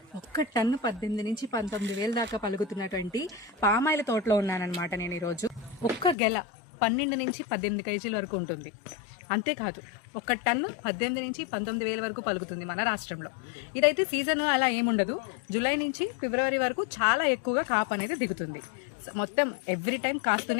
ఒక్క ton 18 నుంచి 19,000 దాకా పలుకుతున్నటువంటి పామాయిల తోటలో ఉన్నానన్నమాట నేను ఈరోజు. ఒక్క గెల 12 నుంచి 18 కేజీల వరకు ఉంటుంది. అంతేకాదు, ఒక టన్ను 18 నుంచి 19,000 వరకు పలుకుతుంది మన రాష్ట్రంలో. ఇదైతే సీజన్ అలా ఏముండదు. జూలై నుంచి ఫిబ్రవరి వరకు చాలా ఎక్కువగా కాపు అనేది దిగుతుంది. మొత్తం ఎవ్రీ టైం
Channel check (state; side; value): drops out; right; at 6.2 s